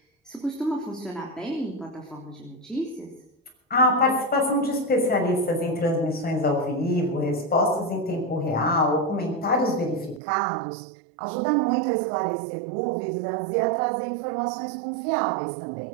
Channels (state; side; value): drops out; left; at 10.2 s